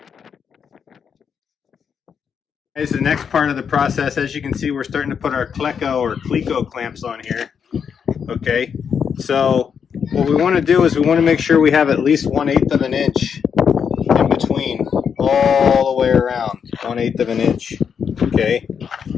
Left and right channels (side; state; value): right; quieter; 7.0 dB